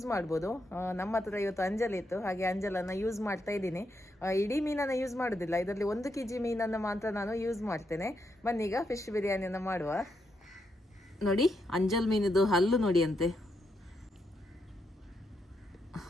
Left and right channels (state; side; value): normal; both; correlation 0.81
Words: ಮಾಡ್ಬೋದು. ನಮ್ಮ ಹತ್ರ ಇವತ್ತು ಅಂಜಲ್ ಇತ್ತು, ಹಾಗೆ ಅಂಜಲನ್ನು ಯೂಸ್ ಮಾಡ್ತಾ ಇದ್ದೀನಿ. ಇಡೀ ಮೀನನ್ನು ಯೂಸ್ ಮಾಡೋದಿಲ್ಲ, ಇದರಲ್ಲಿ 1 kg ಮೀನನ್ನು ಮಾತ್ರ ನಾನು ಯೂಸ್ ಮಾಡ್ತೇನೆ. ಬನ್ನೀಗ ಫಿಶ್ ಬಿರಿಯಾನಿಯನ್ನು ಮಾಡುವ. ನೋಡಿ ಅಂಜಲ್ ಮೀನಿದು ಹಲ್ಲು ನೋಡಿ ಅಂತೆ,